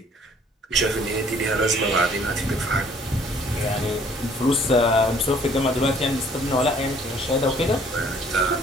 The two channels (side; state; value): both; normal; correlation 0.58